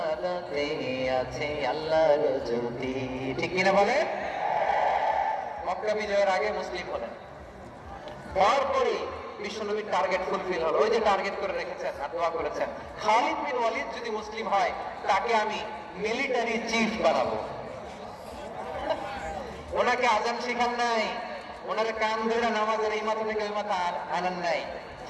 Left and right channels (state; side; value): identical; both; correlation 1.00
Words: আছে আল্লাহর জ্যোতি। ঠিক কিনা বলে? মক্কা বিজয়ের আগে মুসলিম হলেন, তারপরে বিশ্বনবীর টার্গেট ফুলফিল হলো। ওই যে টার্গেট করে রেখেছেন আর দোয়া করেছেন, খালিদ বিন ওয়ালিদ যদি মুসলিম হয় তাকে আমি মিলিটারি চিফ বানাবো। ওনাকে আজান শিখান নাই, ওনারে কান ধরে নামাজের এই মাথা থেকে ওই মাথা আনান নাই,